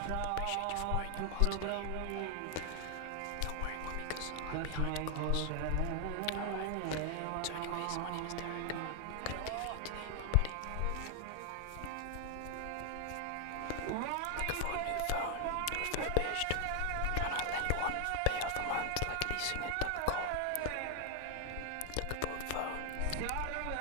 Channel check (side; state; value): both; different; correlation 0.00